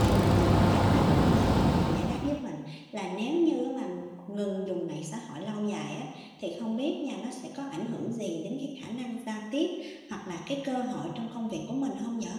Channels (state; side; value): identical; both; correlation 1.00